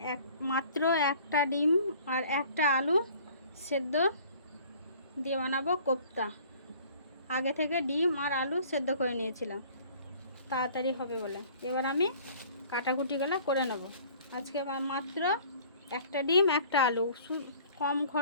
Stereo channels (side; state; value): both; inverted; correlation -0.51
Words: মাত্র একটা ডিম আর একটা আলু সেদ্ধ দিয়ে বানাবো কোপ্তা। আগে থেকে ডিম আর আলু সেদ্ধ করে নিয়েছিলাম তাড়াতাড়ি হবে বলে। এবার আমি কাটাকুটিগুলো করে নেব। আজকে মাত্র একটা ডিম একটা আলু, কম